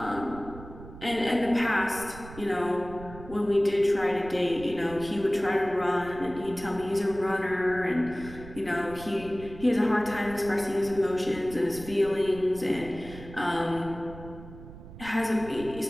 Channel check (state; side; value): noise; right; rumble, 15 dB below the sound